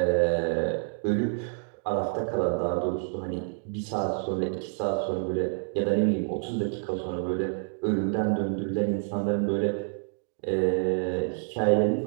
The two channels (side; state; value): left; silent; 59 dB below the other